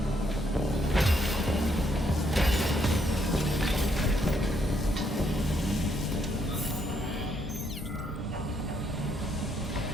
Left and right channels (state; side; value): normal; both; correlation 0.74